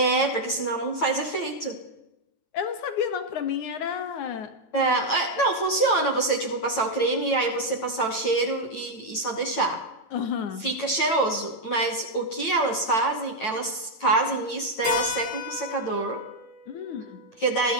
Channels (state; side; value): late; right; 9.1 ms